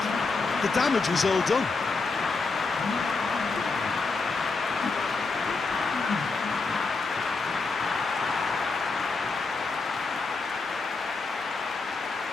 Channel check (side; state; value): right; quieter; 4.1 dB